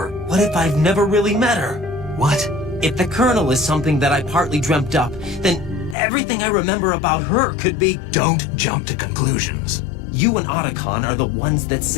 What if I've never really met her? What? If the Colonel is something that I partly dreamt up, then everything I remember about her could be... Don't jump to conclusions. You and Otacon are the ones that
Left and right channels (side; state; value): right; drops out; at 6.0 s